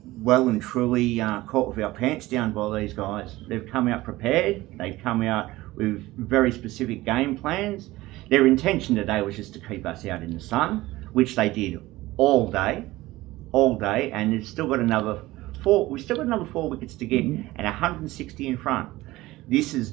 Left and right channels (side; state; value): left; quieter; 18.3 dB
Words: well and truly caught with our pants down by these guys. They've come out prepared. They've come out with very specific game plans. Their intention today was just to keep us out in the sun, which they did all day, and they've still got another 4. We've still got another 4 wickets to get, and 160 in front. This